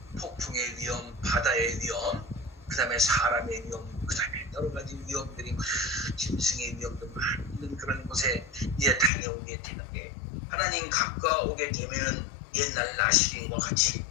폭풍의 위험, 바다의 위험, 그 다음에 사람의 위험, 그 다음에 여러 가지 위험들이, 짐승의 위험도 많은 그런 곳에 이제 다녀오게 되는데, 하나님 가까우게 되면은 옛날 나시린과 같이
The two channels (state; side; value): drops out; right; at 9.1 s